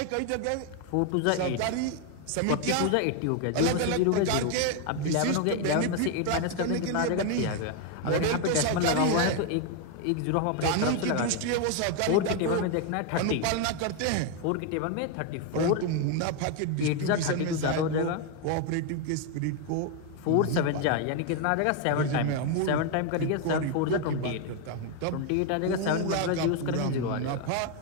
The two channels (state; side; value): different; both; correlation 0.01